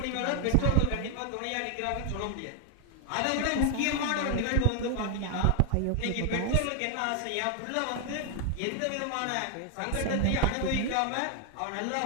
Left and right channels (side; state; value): both; different; correlation 0.00